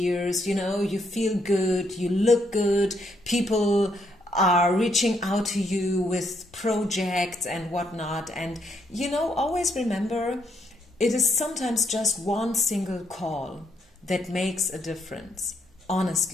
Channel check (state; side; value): normal; both; correlation 0.74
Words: you know, you feel good, you look good, people are reaching out to you with projects and whatnot. And you know, always remember, it is sometimes just one single call that makes a difference,